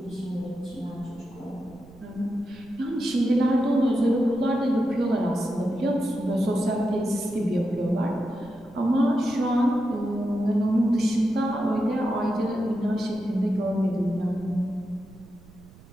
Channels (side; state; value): right; noise; rumble, 23 dB below the sound